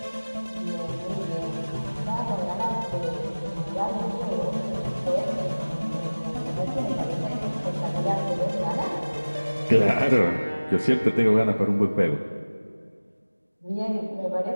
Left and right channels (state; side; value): inverted; both; correlation -1.00